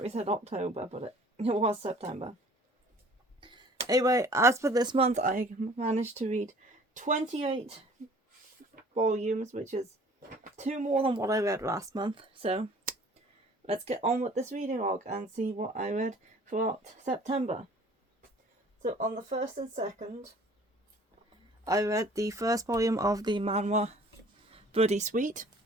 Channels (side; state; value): both; normal; correlation 0.51